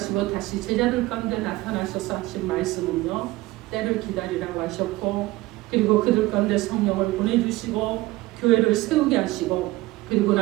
다시 제자들 가운데 나타나셔서 하신 말씀은요 때를 기다리라고 하셨고 그리고 그들 가운데 성령을 보내주시고 교회를 세우게 하시고 그리고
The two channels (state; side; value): quieter; left; 19.2 dB